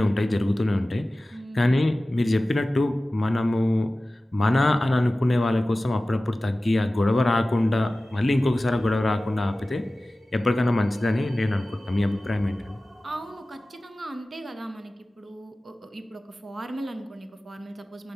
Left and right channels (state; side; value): normal; both; correlation 0.96